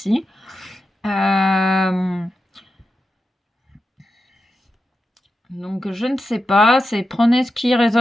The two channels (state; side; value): normal; both; correlation 0.90